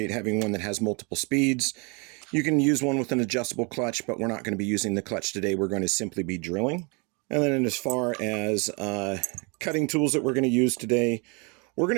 having one that has multiple speeds. You can use one with an adjustable clutch, but we're not going to be using the clutch today. We're going to simply be drilling. And then as far as cutting tools that we're going to use today, we're going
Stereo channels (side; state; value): left; quieter; 31.8 dB